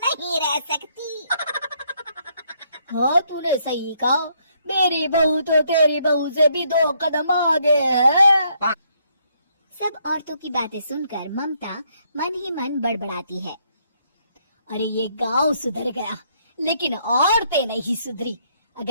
नहीं रह सकती। हाँ, तूने सही कहा। मेरी बहू तो तेरी बहू से भी 2 कदम आगे है। सब औरतों की बातें सुनकर ममता मन ही मन बड़बड़ाती है। अरे ये गांव सुधर गया, लेकिन औरतें नहीं सुधरी।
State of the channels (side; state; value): both; inverted; correlation -0.71